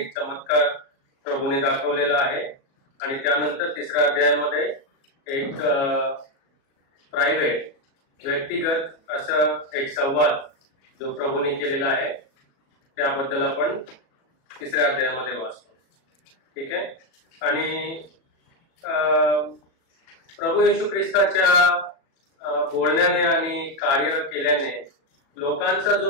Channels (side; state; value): right; late; 37 ms